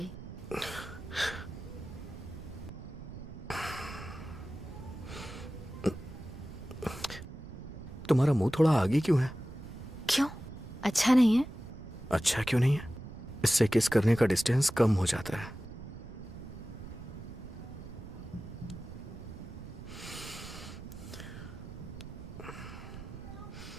तुम्हारा मुंह थोड़ा आगे क्यों है? क्यों? अच्छा नहीं है? अच्छा क्यों नहीं है? इससे किस करने का डिस्टेंस कम हो जाता है।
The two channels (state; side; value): noise; right; rumble, 12 dB below the sound